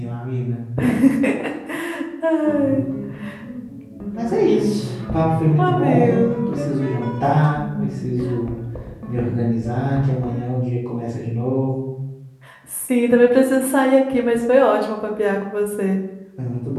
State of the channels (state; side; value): identical; both; correlation 1.00